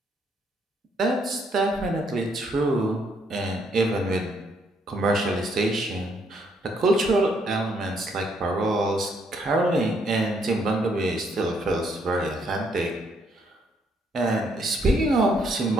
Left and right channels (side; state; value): both; normal; correlation 0.71